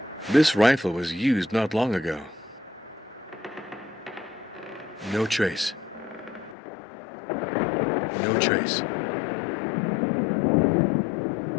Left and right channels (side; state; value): right; drops out; at 6.6 s